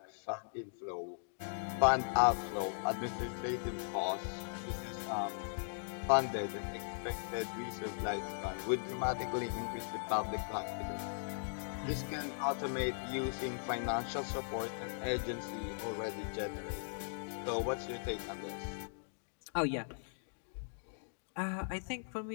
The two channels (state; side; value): silent; right; digital silence